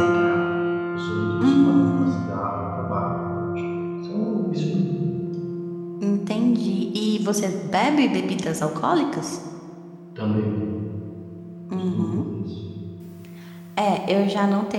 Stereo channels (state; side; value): identical; both; correlation 1.00